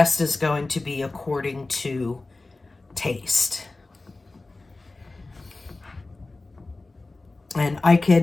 is going to be according to taste. And I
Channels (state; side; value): quieter; right; 3.3 dB